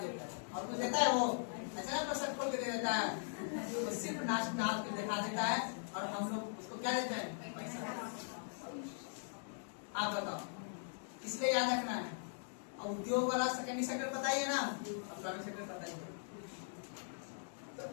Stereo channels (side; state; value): right; silent; digital silence